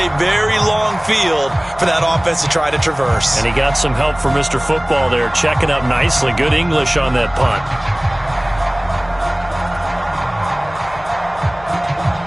very long field for that offense to try to traverse. And he got some help from Mr. Football there, checking up nicely. Good English on that punt.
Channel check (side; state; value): left; noise; hum, 20 dB below the sound